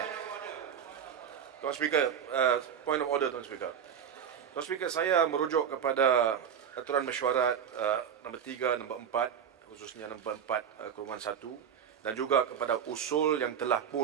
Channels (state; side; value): quieter; left; 8.1 dB